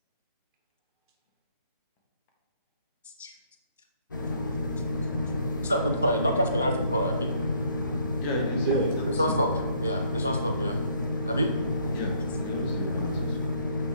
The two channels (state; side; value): inverted; both; correlation -0.66